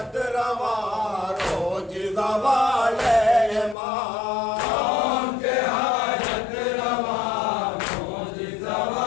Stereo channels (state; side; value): drops out; right; at 3.8 s